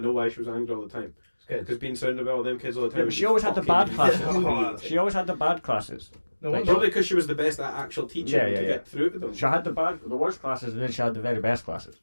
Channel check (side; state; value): both; inverted; correlation -1.00